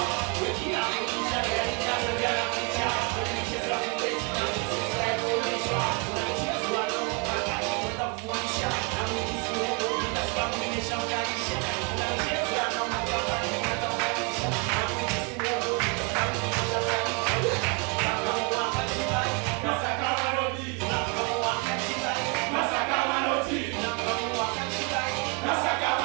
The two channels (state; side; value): quieter; left; 34.1 dB